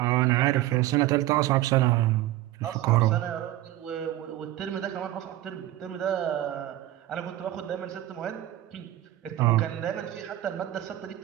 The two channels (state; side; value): quieter; left; 14.6 dB